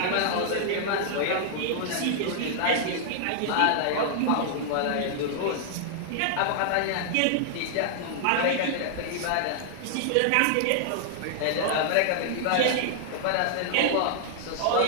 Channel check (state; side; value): different; both; correlation -0.01